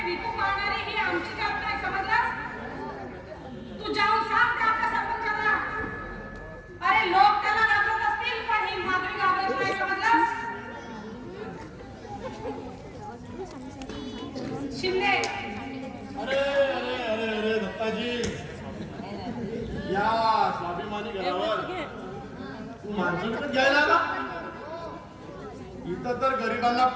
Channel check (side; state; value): both; identical; correlation 1.00